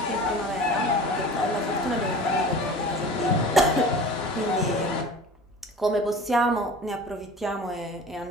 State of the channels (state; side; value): normal; both; correlation 0.39